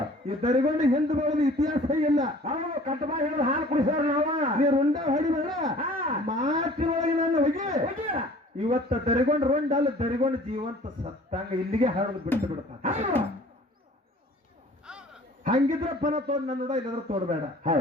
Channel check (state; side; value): normal; both; correlation 0.49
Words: ಈ ದರಿಗೊಂಡು ಹಿಂದೆ ಬರೋದು ಇತಿಹಾಸ ಇಲ್ಲ. ಕಟ್ಟಬಾ ಹಿಡಿದು ಹಾಲು ಕುಡಿಸೋರು ನಾವ. ನೀರು ರುಂಡ ಹೊಡಿಬೇಡ, ಮಾತಿನೊಳಗೆ ನಾನು ಹೋಗಿ ಇವತ್ತ ದರಿಗೊಂಡು ರುಂಡ ಅಲ್ಲ, ದರಿಗೊಂಡು ಜೀವಂತ ಸತ್ತಂಗ ಇಲ್ಲಿಗೆ ಹಾಡೋದು ಬಿಟ್ಟು ಬಿಡ್ತಾನ. ಹಂಗಿದ್ರೆ ಪನ ತೋಡ್ ನನ್ನ ಇಲ್ಲದ್ರ ತೋಡ್ಬೇಡ.